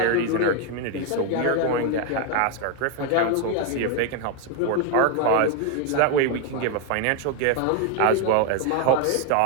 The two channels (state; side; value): different; both; correlation 0.01